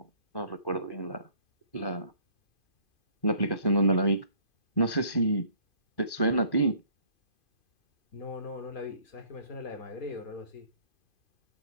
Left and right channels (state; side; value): late; right; 2.5 ms